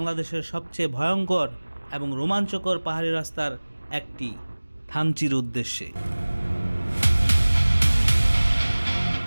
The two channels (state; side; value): inverted; both; correlation -1.00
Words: সবচেয়ে ভয়ঙ্কর এবং রোমাঞ্চকর পাহাড়ি রাস্তার একটি থানচির উদ্দেশ্যে।